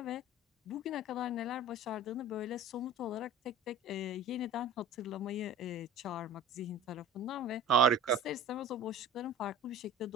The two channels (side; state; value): both; normal; correlation 0.40